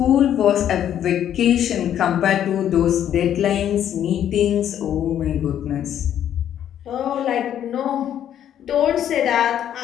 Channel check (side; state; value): right; quieter; 10.3 dB